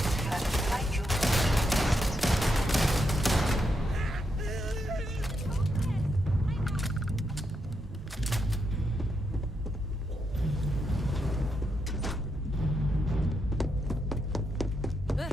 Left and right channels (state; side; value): normal; both; correlation 0.82